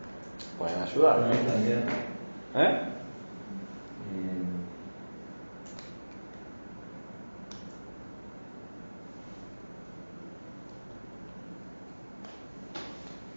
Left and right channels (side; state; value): both; inverted; correlation -1.00